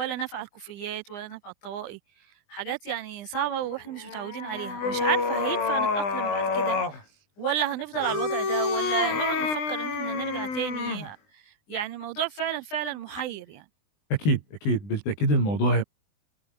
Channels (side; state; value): right; late; 20 ms